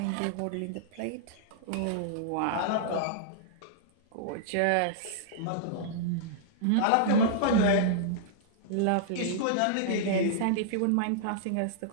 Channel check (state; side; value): different; both; correlation -0.01